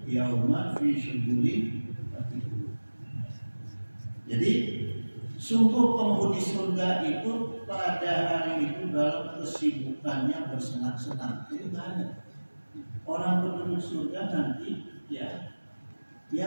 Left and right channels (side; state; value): both; inverted; correlation -1.00